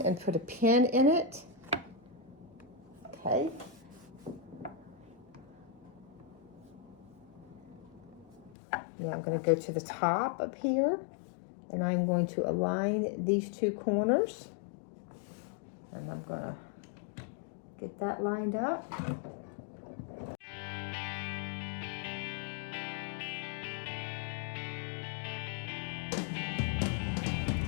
put a pin in it. Okay. Now I'm going to go to the top up here. And I'm going to align these two corners. And I'm going to get that lined up.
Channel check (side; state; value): right; drops out; at 8.6 s